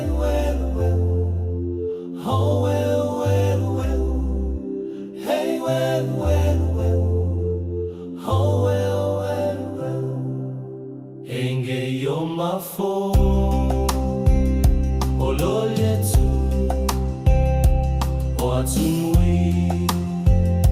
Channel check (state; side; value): identical; both; correlation 1.00